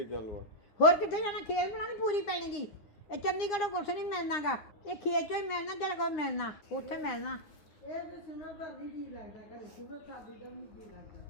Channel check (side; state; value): right; late; 9.8 ms